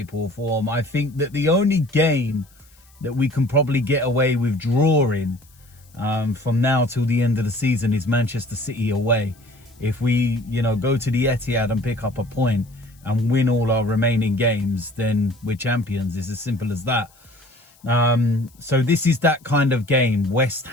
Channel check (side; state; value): left; noise; hiss, 30 dB below the sound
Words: or form. I think that the only game that we can probably get away with drawing from now till the end of the season is Manchester City away. If we, go to the Etihad and pick up a point and win all our remaining games, then we're champions. It's as simple as that. So this is that kind of game. West